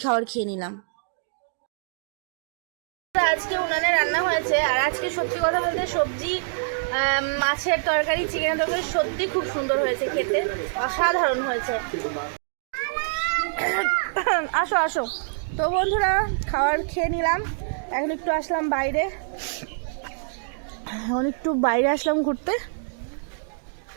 খাবার খেয়ে নিলাম। আজকে উনানে রান্না হয়েছে, আর আজকে সত্যি কথা বলতে সবজি, মাছের তরকারি, চিকেনের তরকারি সত্যি খুব সুন্দর হয়েছে, খেতে অসাধারণ হয়েছে। আসো আসো। তো বন্ধুরা খাবার খেয়ে নিলাম, এখন একটু আসলাম বাইরে, আসলাম ঘুরতে।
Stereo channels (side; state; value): left; silent; digital silence